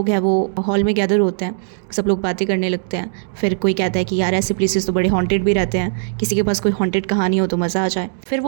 हैं वो हॉल में गैदर होते हैं, सब लोग बातें करने लगते हैं। फिर कोई कहता है कि यार ऐसे प्लेसेस तो बड़े हॉन्टेड भी रहते हैं, किसी के पास कोई हॉन्टेड कहानी हो तो मज़ा आ जाए। फिर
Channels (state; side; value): silent; left; digital silence